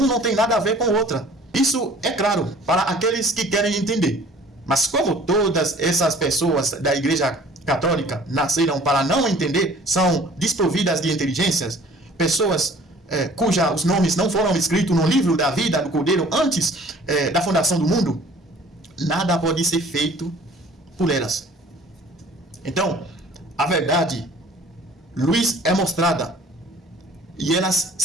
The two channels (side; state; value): both; normal; correlation 0.51